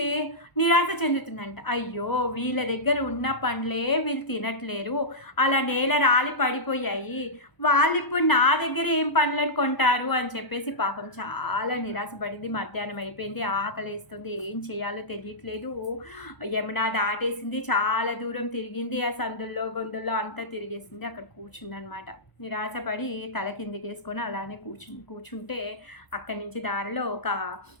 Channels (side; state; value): right; late; 1.0 ms